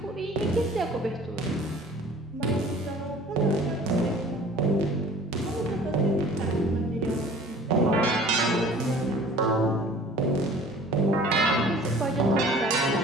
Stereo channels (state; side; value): normal; both; correlation 0.48